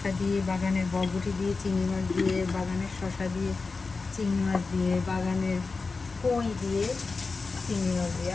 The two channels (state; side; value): quieter; right; 4.2 dB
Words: দিয়ে, বাগানের বরবটি দিয়ে, চিংড়ি মাছ দিয়ে, বাগানের শসা দিয়ে, চিংড়ি মাছ দিয়ে, বাগানের কই দিয়ে, চিংড়ি মাছ দিয়ে।